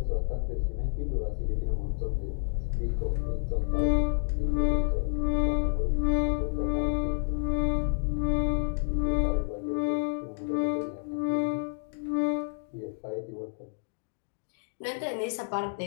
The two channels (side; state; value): right; silent; digital silence